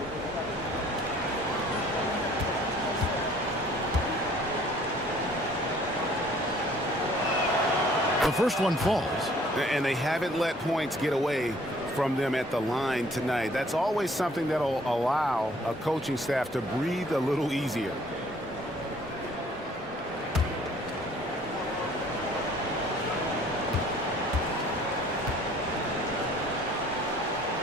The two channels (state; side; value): normal; both; correlation 0.56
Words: The first one falls. And they haven't let points get away from them at the line tonight. That's always something that'll allow a coaching staff to breathe a little easier.